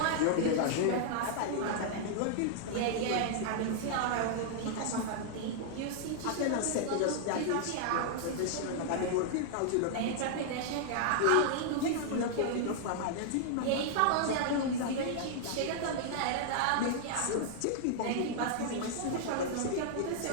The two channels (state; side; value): different; both; correlation -0.01